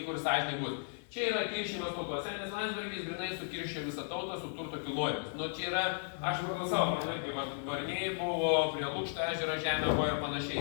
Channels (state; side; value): silent; right; digital silence